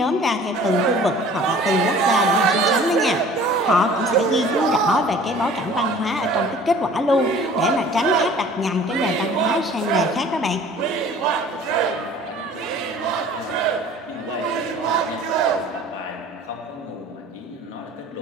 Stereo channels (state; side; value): normal; both; correlation 0.48